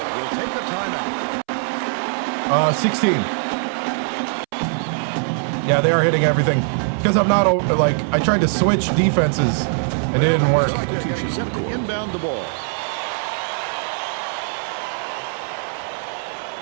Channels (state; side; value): silent; left; 65 dB below the other